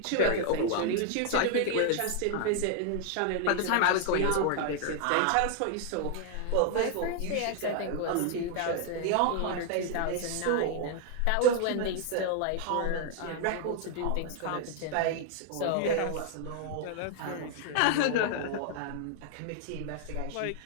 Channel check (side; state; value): both; different; correlation 0.00